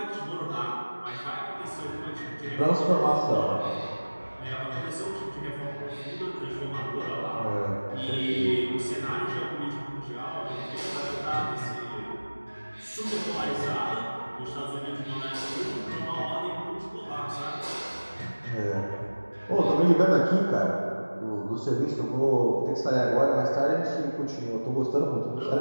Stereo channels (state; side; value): inverted; both; correlation -1.00